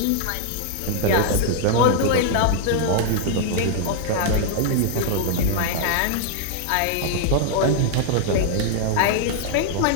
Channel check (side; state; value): both; different; correlation 0.00